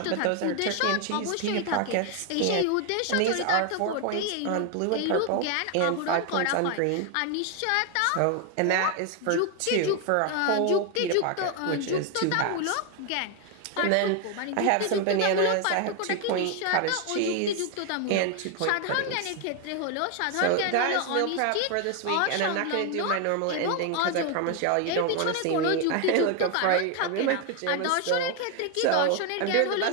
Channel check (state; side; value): different; both; correlation 0.01